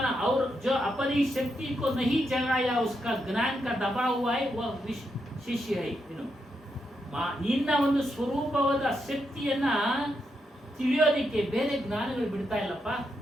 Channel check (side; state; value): both; normal; correlation 0.82